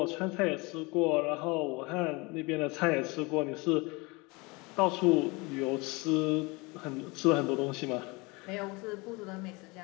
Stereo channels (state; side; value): quieter; right; 26.1 dB